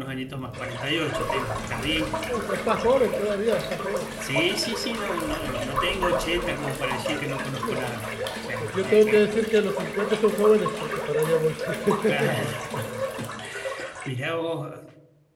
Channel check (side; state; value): both; identical; correlation 1.00